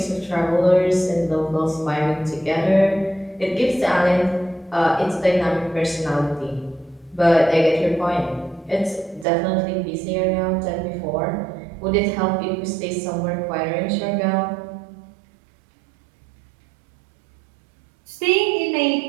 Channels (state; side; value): drops out; left; at 9.2 s